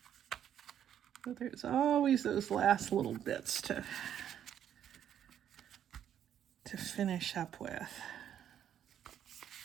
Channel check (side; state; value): left; quieter; 9.8 dB